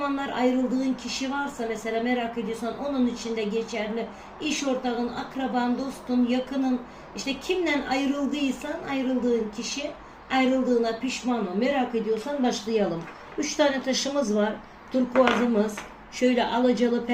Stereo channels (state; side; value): identical; both; correlation 1.00